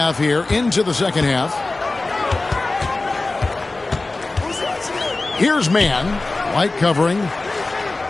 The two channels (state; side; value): quieter; right; 3.3 dB